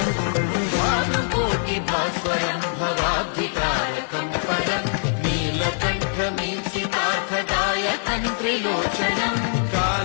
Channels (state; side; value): silent; right; digital silence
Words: भास्वरं भवाब्धिकारकं परं नीलकण्ठमीप्सितार्थदायकं त्रिलोचनं